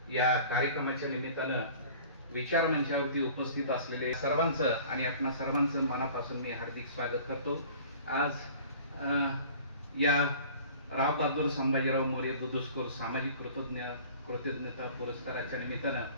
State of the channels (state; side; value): inverted; both; correlation -0.46